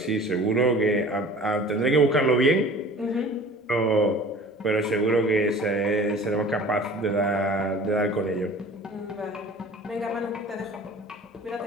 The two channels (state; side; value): normal; both; correlation 0.45